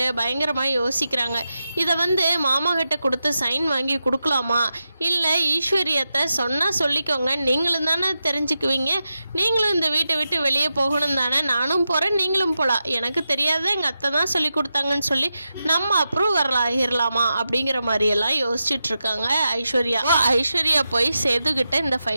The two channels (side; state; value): both; inverted; correlation -0.89